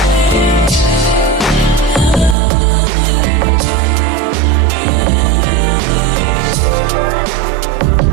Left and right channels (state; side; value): drops out; left; at 2.4 s